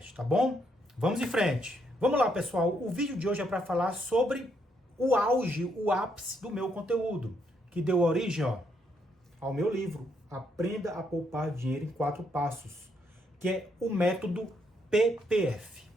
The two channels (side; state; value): both; normal; correlation 0.75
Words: tá bom? Vamos em frente. Vamos lá pessoal, o vídeo de hoje é para falar sobre o auge, o ápice do meu conteúdo, que deu origem, ao meu livro, Aprenda a Poupar Dinheiro em 4 Passos, que é o método PPF.